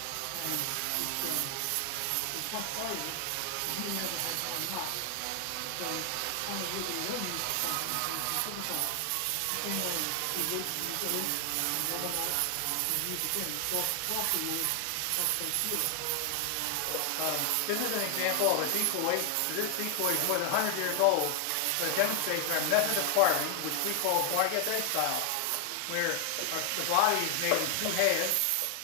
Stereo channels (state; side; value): different; both; correlation 0.00